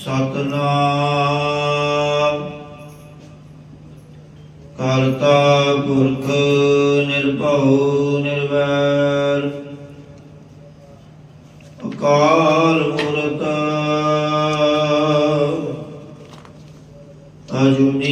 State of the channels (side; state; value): both; identical; correlation 1.00